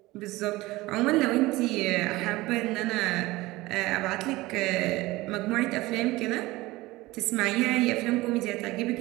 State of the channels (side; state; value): left; quieter; 19.7 dB